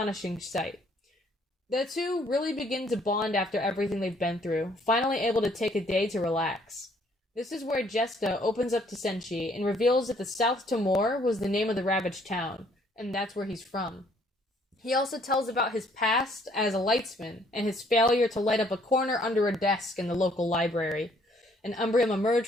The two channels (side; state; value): both; normal; correlation 0.64